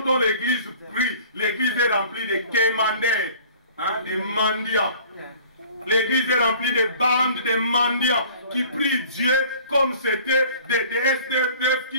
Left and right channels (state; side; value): inverted; both; correlation -0.49